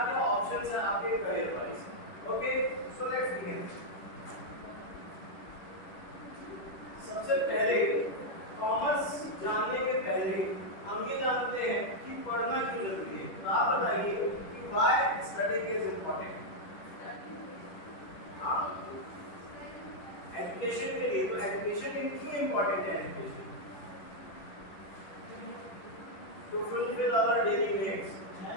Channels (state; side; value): late; right; 10 ms